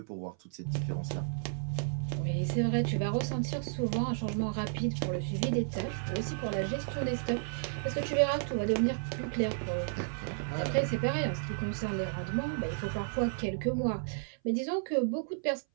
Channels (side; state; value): left; silent; 56 dB below the other